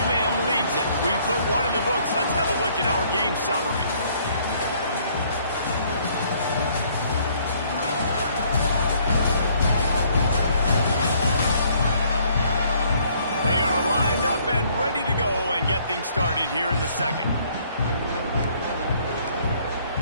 leads it. We put one in the books. Let's have a look at our game summary. They are lined up and ready to go and get things started here in the second.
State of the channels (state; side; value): inverted; both; correlation -0.63